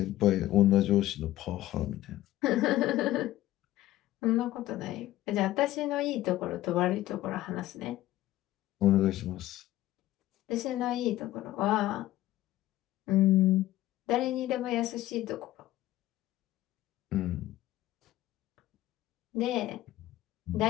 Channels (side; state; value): right; quieter; 15.2 dB